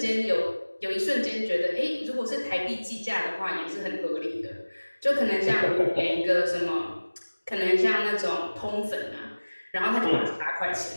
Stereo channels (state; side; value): inverted; both; correlation -1.00